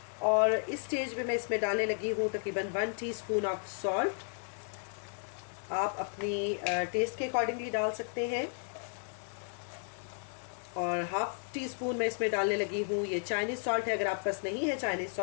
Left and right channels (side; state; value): right; silent; 55 dB below the other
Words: और इस स्टेज पे मैं इसमें डालने लगी हूँ तकरीबन 1 टीस्पून ऑफ सॉल्ट। आप अपनी टेस्ट के अकॉर्डिंगली डाल सकते हैं। और हाफ टी स्पून मैं इसमें डालने लगी हूँ ये चाइनीज़ सॉल्ट है। अगर आप पास नहीं है चाइनीज़